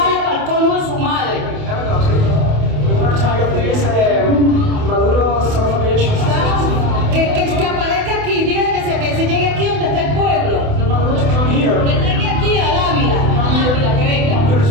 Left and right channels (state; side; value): late; left; 28 ms